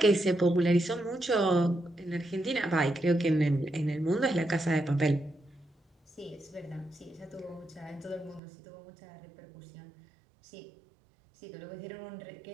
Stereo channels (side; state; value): left; drops out; at 8.4 s